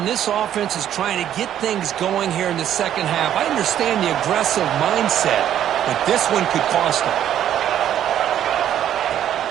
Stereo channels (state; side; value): quieter; left; 10.8 dB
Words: this offense is trying to get things going here in the second half. I understand the aggressive mindset, but this one could cost them.